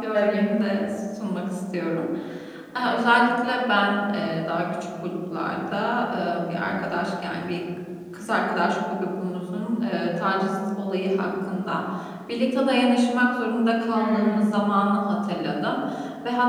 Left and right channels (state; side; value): identical; both; correlation 1.00